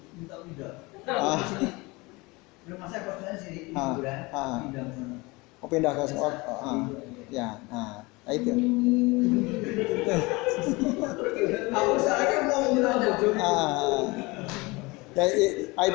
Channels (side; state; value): right; quieter; 24.2 dB